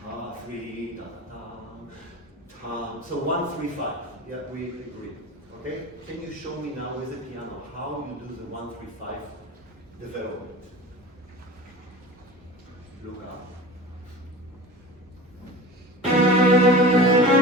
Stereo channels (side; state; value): both; normal; correlation 0.35